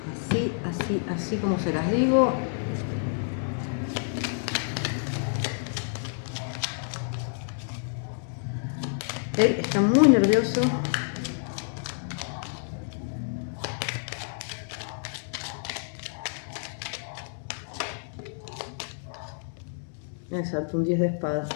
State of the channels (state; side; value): silent; right; digital silence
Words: como se las digo. Él está muy nervioso. Exacto, un 10 de espadas.